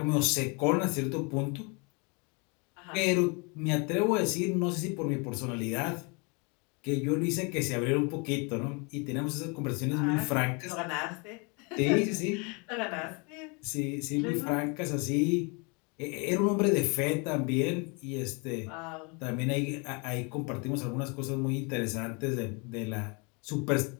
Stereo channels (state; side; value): quieter; right; 31.9 dB